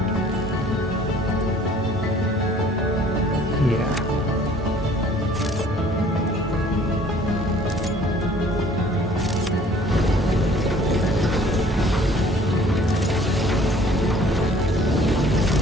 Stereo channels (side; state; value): both; normal; correlation 0.55